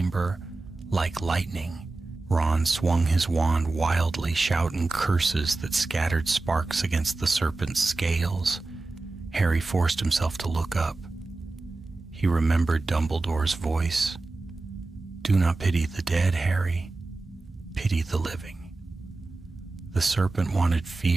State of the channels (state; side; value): quieter; left; 3.3 dB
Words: like lightning. Ron swung his wand wildly, shouting curses that scattered sparks against the serpent's scales. Harry forced himself to look up. He remembered Dumbledore's voice. "Do not pity the dead, Harry. Pity the living." The serpent wanted